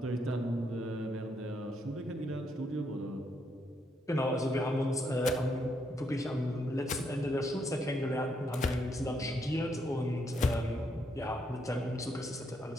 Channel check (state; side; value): normal; both; correlation 0.76